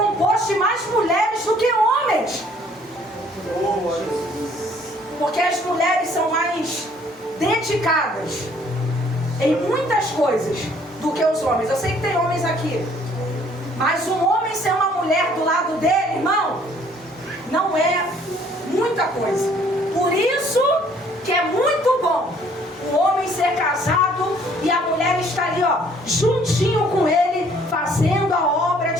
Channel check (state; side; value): normal; both; correlation 0.60